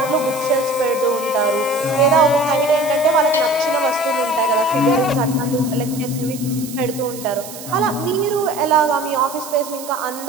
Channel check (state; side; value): noise; right; hiss, 13 dB below the sound